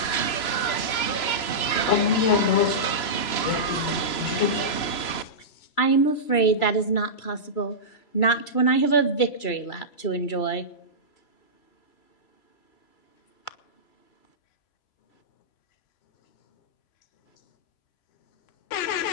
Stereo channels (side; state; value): right; late; 3.0 ms